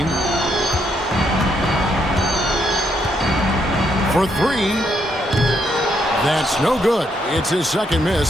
For 3. That's no good. It's his second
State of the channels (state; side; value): normal; both; correlation 0.76